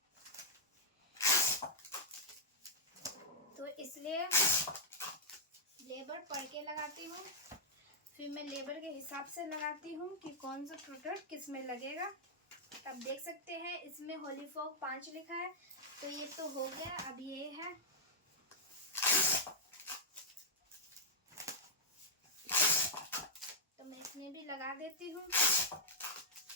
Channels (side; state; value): both; normal; correlation -0.05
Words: तो इसलिए लेबर पढ़ के लगाती हूँ, फिर मैं लेबर के हिसाब से लगाती हूँ कि कौन सा प्रोडक्ट किस में लगेगा। अब देख सकते हैं इसमें होली फॉग 5 लिखा है, तो ये तो हो गया। अब ये है, तो मैं इसमें भी लगा देती हूँ।